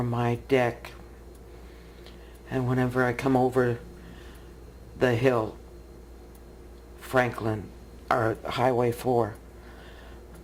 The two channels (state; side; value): identical; both; correlation 1.00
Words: my deck, and whenever I come over the hill, Franklin, or Highway 4,